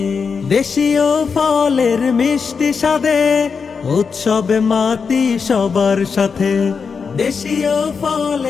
দেশীয় ফলের মিষ্টি স্বাদে উৎসবে মাতি সবার সাথে। দেশীয়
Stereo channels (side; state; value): right; quieter; 5.6 dB